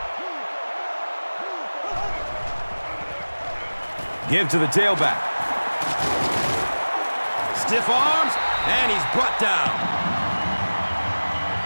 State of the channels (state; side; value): inverted; both; correlation -1.00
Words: Give to the tailback. Stiff arms, and he's brought down.